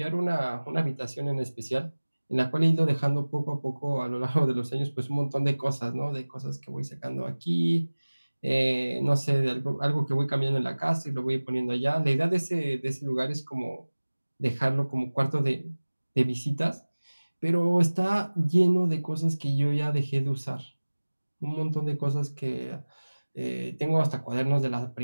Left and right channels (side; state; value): both; inverted; correlation -1.00